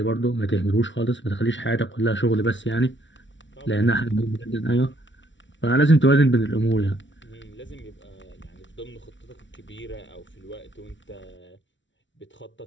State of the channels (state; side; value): late; right; 0.55 ms